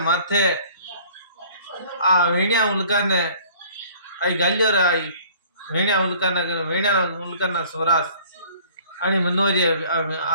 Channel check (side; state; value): both; inverted; correlation -0.52